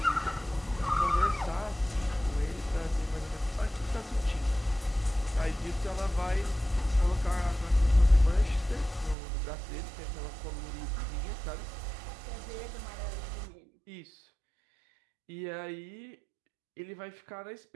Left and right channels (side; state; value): left; drops out; at 9.2 s